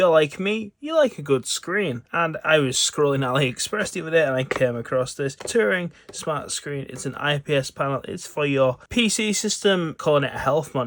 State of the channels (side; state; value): both; identical; correlation 1.00